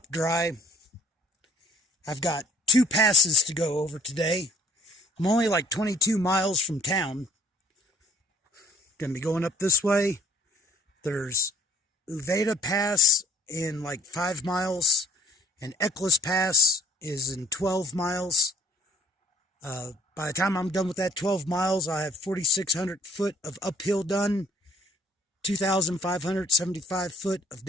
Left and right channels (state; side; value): normal; both; correlation 0.57